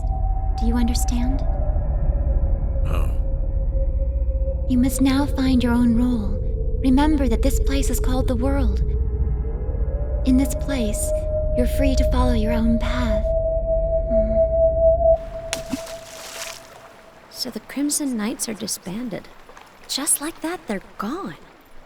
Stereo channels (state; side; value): identical; both; correlation 1.00